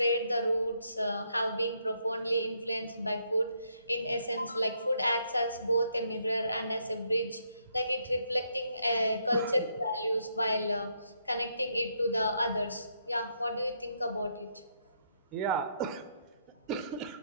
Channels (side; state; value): both; inverted; correlation -0.75